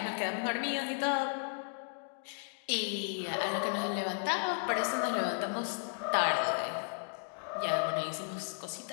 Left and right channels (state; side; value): silent; right; digital silence